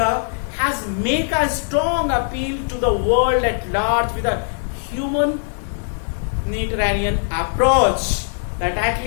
has made a strong appeal to the world at large with a humanitarian approach, that at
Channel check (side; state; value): right; silent; digital silence